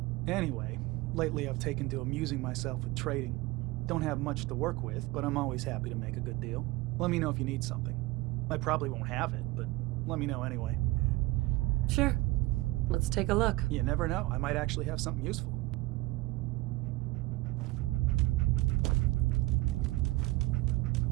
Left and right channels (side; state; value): left; quieter; 20.0 dB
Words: Anyway, lately I've taken to amusing myself with trading. Don't have much to work with, but I'm always happy to make a good deal. Let me know if you need something. I probably won't have it, but let me know anyway. Sure. Let's take a look. You never know. I might actually have something useful.